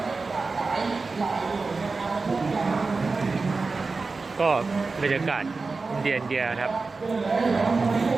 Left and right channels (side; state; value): left; quieter; 4.0 dB